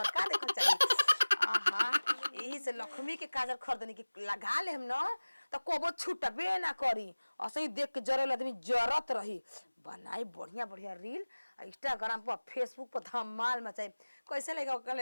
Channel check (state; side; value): inverted; both; correlation -1.00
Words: घर का देखल चाहे। आहा यही से लक्ष्मी के काजल खरीदनी के लगा ले हम न त कोबो छूटबे ना करी असही देख के जरल आदमी जरत रही। बनाई बढ़िया बढ़िया रील इंस्टाग्राम पर फेसबुक पर धमाल मचाई कैसे लगा